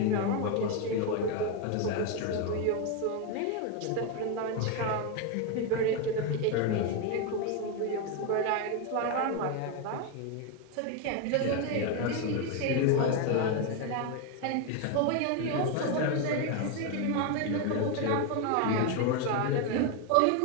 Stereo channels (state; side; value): different; both; correlation 0.02